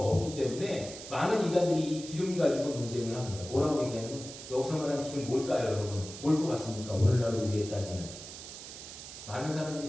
때문에 많은 이단들이 이 기름 가지고 논쟁을 합니다. 뭐라고 얘기하냐면, 여기서 말하는 기름 뭘까요, 여러분? 뭘 것 같습니까? 오늘날 우리에 따지면 많은 사람들이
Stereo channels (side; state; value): right; noise; hiss, 12 dB below the sound